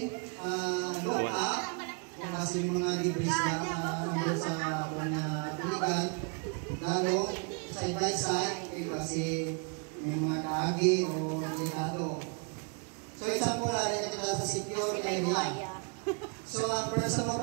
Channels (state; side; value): quieter; left; 36.2 dB